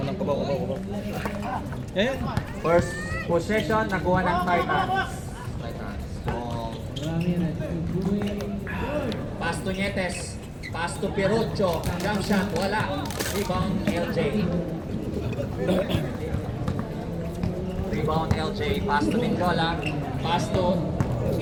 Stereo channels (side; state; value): both; identical; correlation 1.00